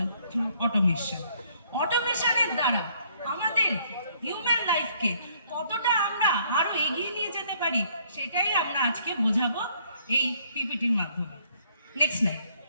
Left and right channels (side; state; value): both; inverted; correlation -0.65